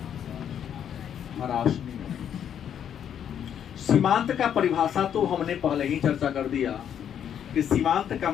ह्रास नियम। सीमांत का परिभाषा तो हमने पहले ही चर्चा कर दिया कि सीमांत का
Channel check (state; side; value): quieter; right; 9.1 dB